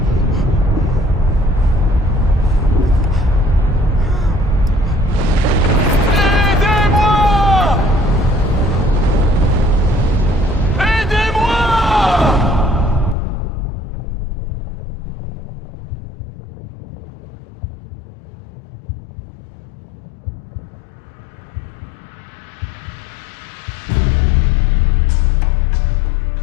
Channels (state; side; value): drops out; right; at 13.2 s